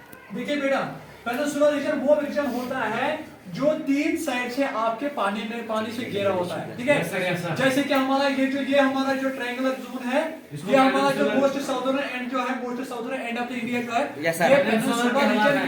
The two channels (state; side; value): identical; both; correlation 1.00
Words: देखिए बेटा, पेनिनसुला रीजन वो रीजन होता है जो 3 साइड से आपके पानी से घेरा होता है। ठीक है, जैसे कि हमारा ये हमारा जो ट्रायंगुलर जोन है, ये हमारा जो मोस्ट साउदर्न एंड जो है, most southern end of the India जो है, ये पेनिनसुला रीजन